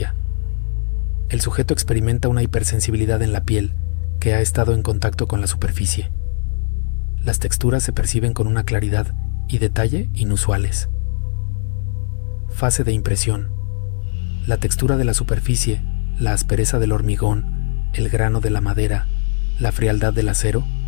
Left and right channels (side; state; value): right; silent; digital silence